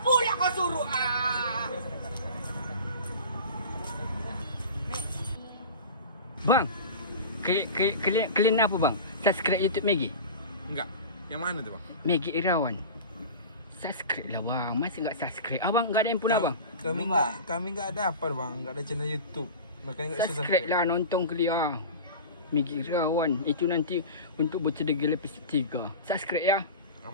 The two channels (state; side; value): inverted; both; correlation -0.33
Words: pula kau suruh. Bang, kalian apa bang? Subscribe YouTube Maggie. Enggak. Yang mana tu bang? Maggie Irawan. Subscribe lah bang. Masih enggak subscribe? Abang enggak ada yang pula bang? Kami enggak ada apa bang. Enggak ada channel YouTube. Makanya enggak bisa Subscribe lah, nonton kelia. Maggie Irawan. Itu nanti untuk bercedera episode 3. Subscribe ya.